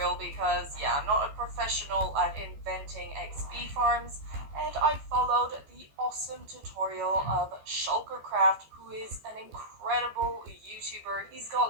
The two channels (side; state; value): left; late; 14 ms